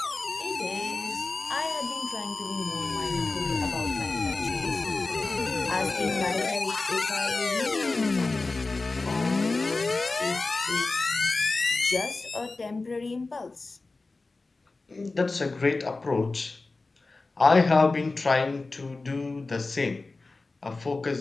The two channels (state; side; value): quieter; right; 3.5 dB